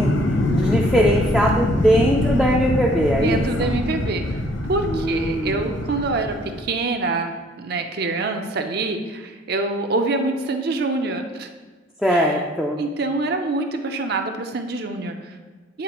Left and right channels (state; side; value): normal; both; correlation 0.57